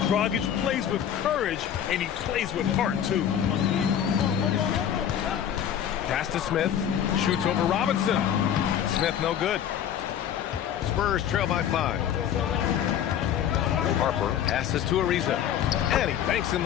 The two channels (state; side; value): quieter; right; 9.7 dB